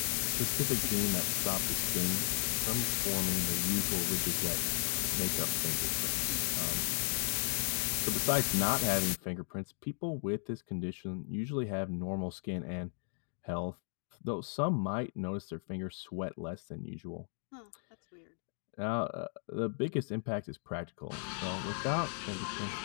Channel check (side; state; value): right; silent; digital silence